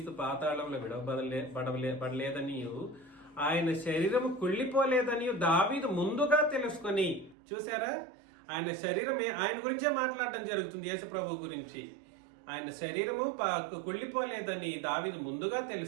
పాతాళంలో విడవబడలేదని, ఆయన శరీరం కుళ్ళిపోలేదని దావీదు ముందుగా తెలుసుకొని, చూసారా, ఆయన శరీరం ఆయన గురించే మాట్లాడటం జరుగుతుంది. యేసు ప్రభు గురించి ఆయన శరీరము కుళ్ళిపోలేదని దావీదు ముందుగా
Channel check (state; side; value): drops out; left; at 7.4 s